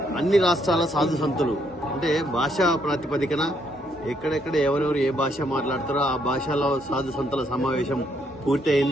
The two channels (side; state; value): both; normal; correlation 0.72